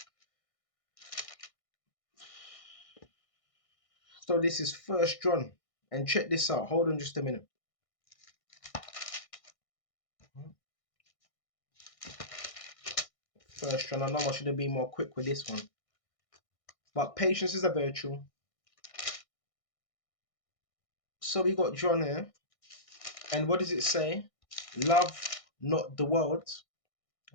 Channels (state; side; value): late; right; 1.6 ms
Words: So this is First John, and check this out. Hold on just a minute. First John. I know I should have been more quick with this one, but patience is a virtue. So we got John here, and what does it say? Love not the world.